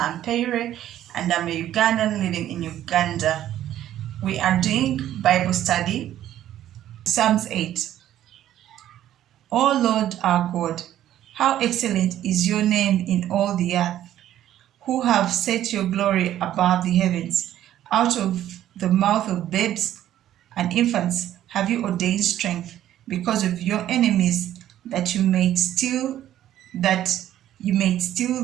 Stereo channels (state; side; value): quieter; left; 12.2 dB